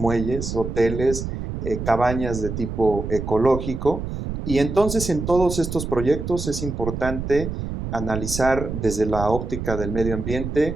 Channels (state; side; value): noise; right; rumble, 5 dB below the sound